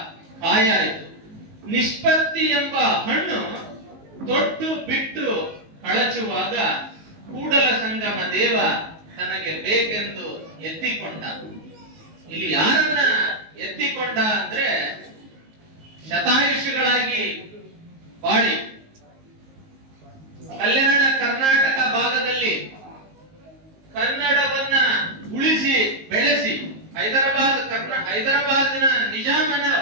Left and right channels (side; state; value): left; late; 19 ms